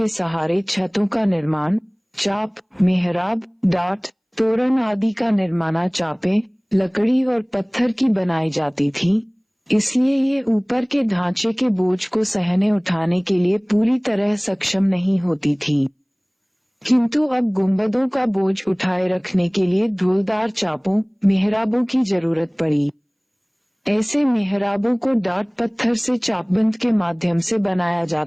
सहारे छतों का निर्माण, चाप, मेहराब, डाट, तोरण आदि का निर्माण चापें लकड़ी और पत्थर की बनाई जाती थीं, इसलिए ये ऊपर के ढांचे के बोझ को सहने उठाने के लिए पूरी तरह सक्षम नहीं होती थीं। किंतु अब गुंबदों का बोझ उठाए रखने के लिए ढोलदार चापों, मेहराबों की जरूरत पड़ी। ऐसे मेहराबों को डाट पत्थर से चापबंद के माध्यम से बनाया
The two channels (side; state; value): both; identical; correlation 1.00